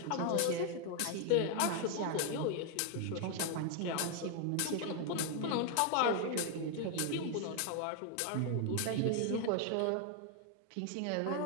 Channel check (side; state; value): both; different; correlation 0.00